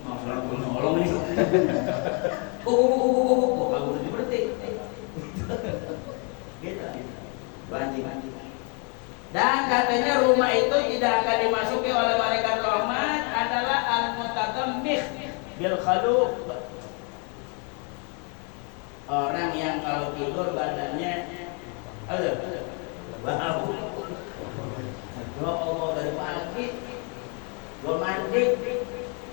mau salah gue nolong nih. Bagus udah berhenti. Gitu. Anjing. Dan katanya rumah itu tidak akan dimasuki oleh malaikat rahmat adalah al-mutatammih bil khaluq. Orang yang kalau tidur badannya bau. Ya Allah, dari pagi belum mandi.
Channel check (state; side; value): quieter; right; 36.3 dB